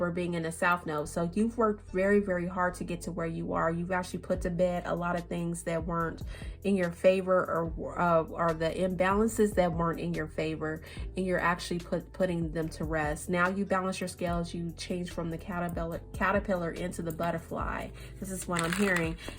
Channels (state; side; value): identical; both; correlation 1.00